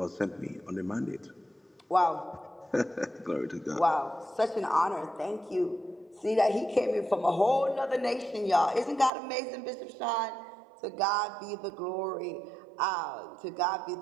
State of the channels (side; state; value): left; drops out; at 9.1 s